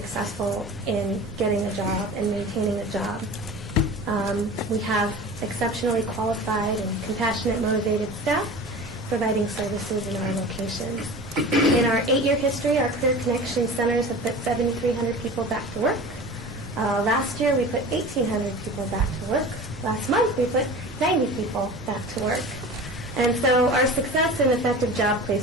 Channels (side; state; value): both; normal; correlation 0.36